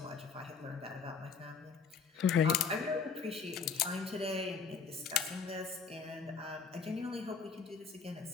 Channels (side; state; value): right; quieter; 5.5 dB